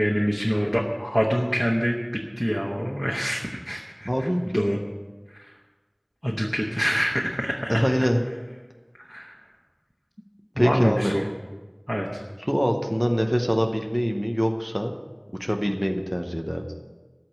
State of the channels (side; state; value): both; identical; correlation 1.00